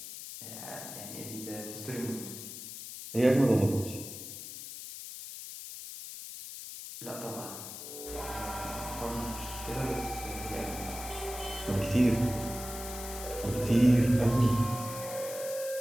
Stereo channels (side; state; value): left; noise; hiss, 10 dB below the sound